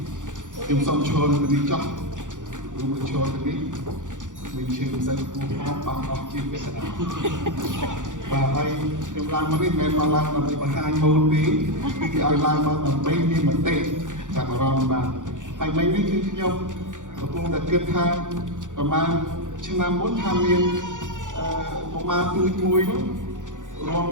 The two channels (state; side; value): late; left; 0.87 ms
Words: tìm xong cho nó đi chọn đúng rồi cho cái mình chơi dân cũng có bằng học chuyên về sản và hay em làm mà biết em mà làm bằng hai môn tí cái ai làm mà mấy đi mà tệ chẳng là ròn mà hay mấy đi chứ nhau và cũng đã kết tha và mà chương năm 4 tham viên của ma tươi mùi